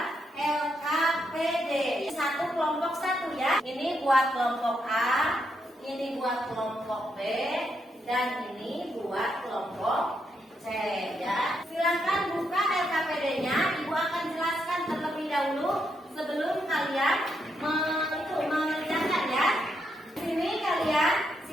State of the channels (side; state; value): both; normal; correlation 0.80